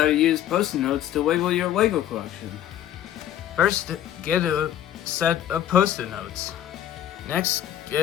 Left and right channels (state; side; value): quieter; right; 11.4 dB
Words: to use Post-it notes to label your LEGO collection. First, get a set of Post-it notes. Next,